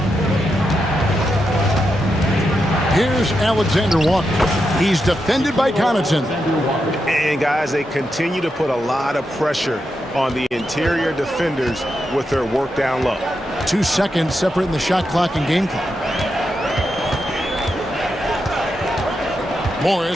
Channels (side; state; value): both; normal; correlation 0.85